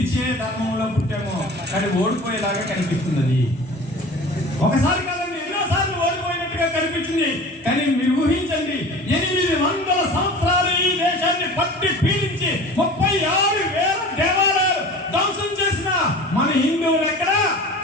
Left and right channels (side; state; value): both; normal; correlation 0.39